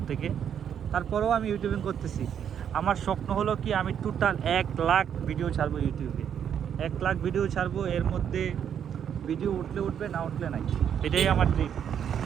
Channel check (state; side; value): quieter; left; 8.6 dB